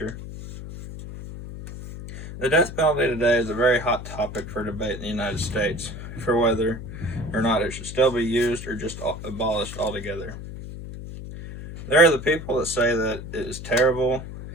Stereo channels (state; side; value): noise; left; hum, 10 dB below the sound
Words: The death penalty today is a very hot topic for debate in the United States, for whether or not it should still be used or just abolished altogether. There are the people that say that it is terrible